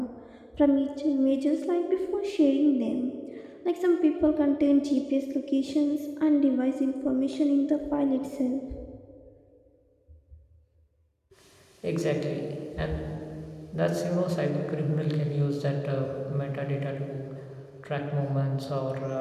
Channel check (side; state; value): both; identical; correlation 1.00